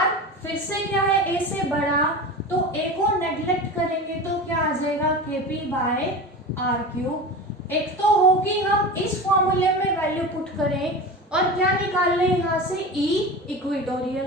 फिर से क्या है, A से बड़ा, तो A को नेग्लेक्ट करेंगे तो क्या आ जाएगा, KP बाय R³। एक तो होगी हम इस फॉर्मूले में वैल्यू पुट करें और क्या निकाल लें यहाँ से, E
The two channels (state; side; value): normal; both; correlation 0.29